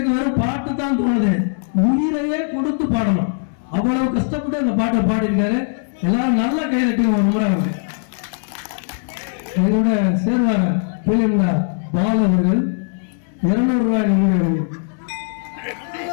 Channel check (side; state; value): right; silent; digital silence